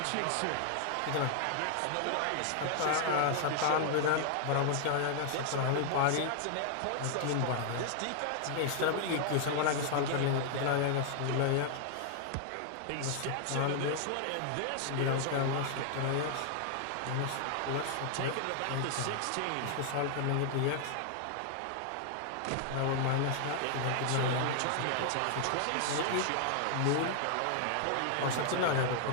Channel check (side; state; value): both; different; correlation 0.00